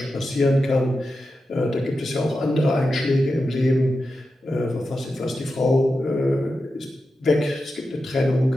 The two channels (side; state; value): both; normal; correlation 0.90